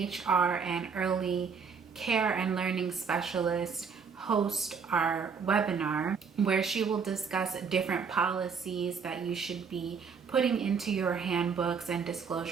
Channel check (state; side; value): quieter; left; 5.9 dB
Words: and early care and learning specialist host our webinar where she will discuss different policies that you should be putting into your handbooks and